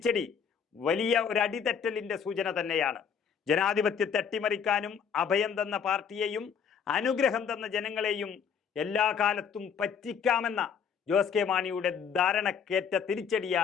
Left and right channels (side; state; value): right; quieter; 7.1 dB